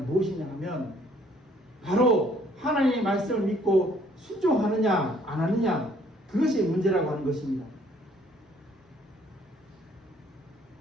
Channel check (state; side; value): normal; both; correlation 0.62